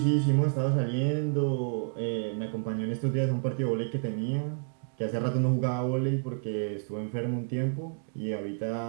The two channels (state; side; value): silent; left; digital silence